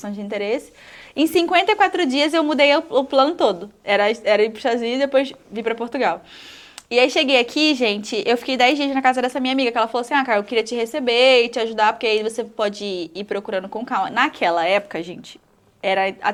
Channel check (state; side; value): identical; both; correlation 1.00